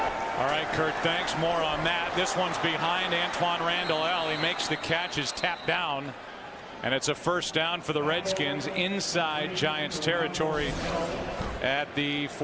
All right, Kurt, thanks. More on that. This one's behind Antoine Randall. He makes the catch, is tapped down, and it's a first down for the Redskins inside Giants territory at the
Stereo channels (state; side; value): identical; both; correlation 1.00